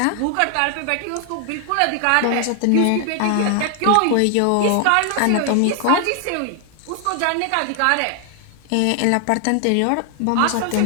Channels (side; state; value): both; different; correlation 0.00